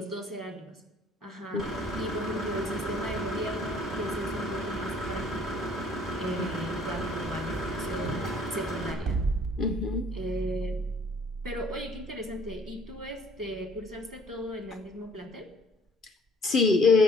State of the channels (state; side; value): normal; both; correlation 0.58